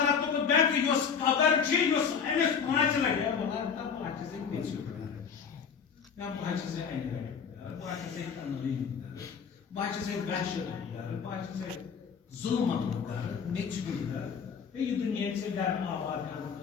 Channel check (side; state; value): right; quieter; 6.5 dB